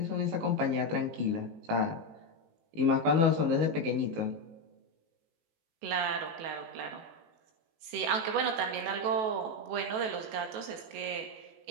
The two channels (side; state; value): left; late; 18 ms